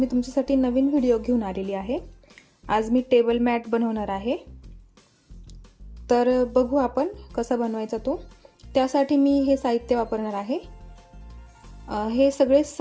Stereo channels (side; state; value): both; identical; correlation 1.00